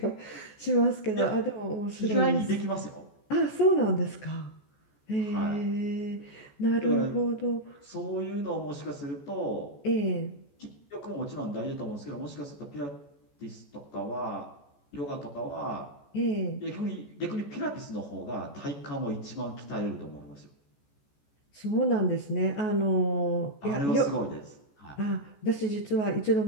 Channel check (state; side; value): late; right; 14 ms